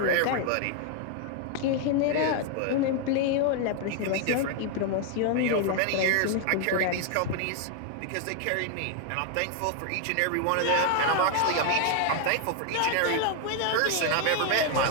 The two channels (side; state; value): both; different; correlation 0.01